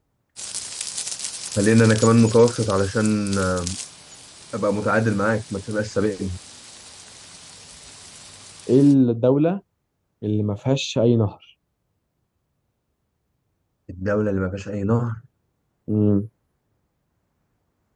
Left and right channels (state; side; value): identical; both; correlation 1.00